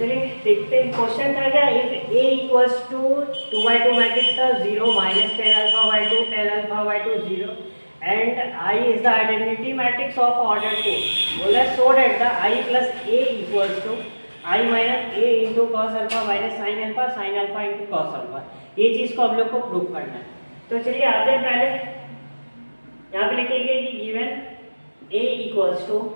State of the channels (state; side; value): inverted; both; correlation -1.00